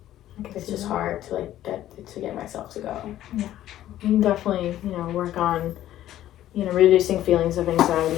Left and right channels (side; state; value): right; quieter; 13.0 dB